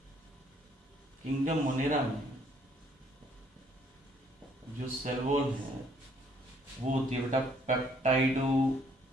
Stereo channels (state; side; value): normal; both; correlation 0.65